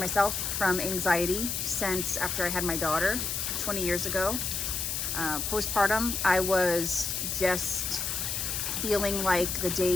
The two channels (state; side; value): noise; left; hiss, 2 dB below the sound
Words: from anxiety since after I had my daughter 20 years ago. Postpartum, I was just feeling like the